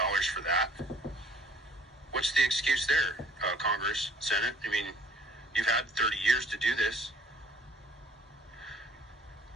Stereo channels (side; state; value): both; normal; correlation 0.55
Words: that. What's the excuse there, Congress, Senate? I mean, you've had 30 years to do this.